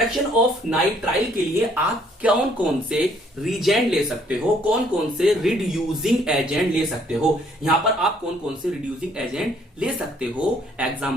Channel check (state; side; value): normal; both; correlation 0.64